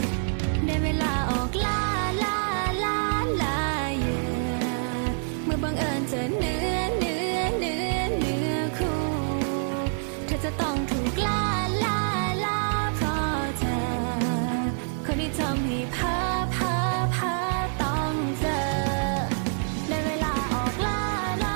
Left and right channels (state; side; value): silent; left; digital silence